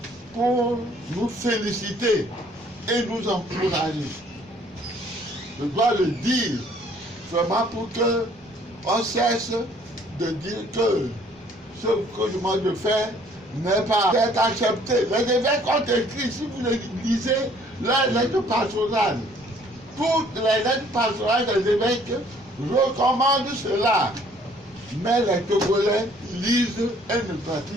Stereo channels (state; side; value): normal; both; correlation 0.59